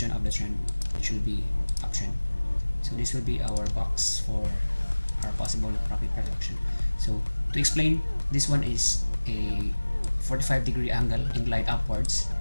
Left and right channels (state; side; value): inverted; both; correlation -1.00